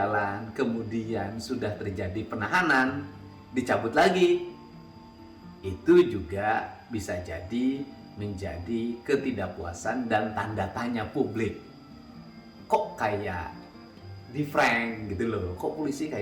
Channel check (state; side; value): identical; both; correlation 1.00